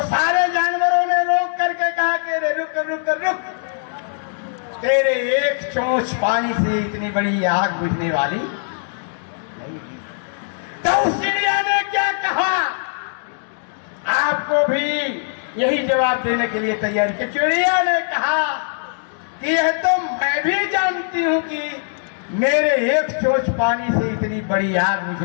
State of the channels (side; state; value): right; silent; digital silence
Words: सारे जानवरों ने रोक करके कहा कि रे रुक रुक रुक, तेरे एक चोंच पानी से इतनी बड़ी आग बुझने वाली नहीं। तो उस चिड़िया ने क्या कहा? आपको भी यही जवाब देने के लिए तैयार कि चिड़िया ने कहा कि यह तो मैं भी जानती हूं कि मेरे एक चोंच पानी से इतनी बड़ी आग